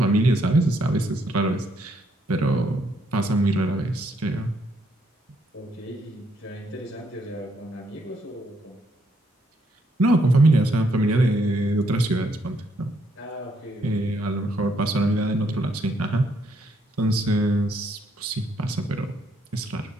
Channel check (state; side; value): normal; both; correlation 0.73